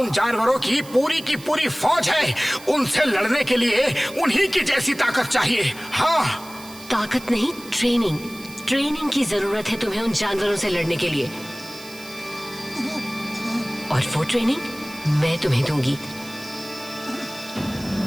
जानवरों की पूरी फौज है। उनसे लड़ने के लिए उन्हीं की जैसी ताकत चाहिए। हाँ, ताकत नहीं, ट्रेनिंग। ट्रेनिंग की जरूरत है तुम्हें उन जानवरों से लड़ने के लिए। और वो ट्रेनिंग मैं तुम्हें दूंगी।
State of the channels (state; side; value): noise; right; hiss, 18 dB below the sound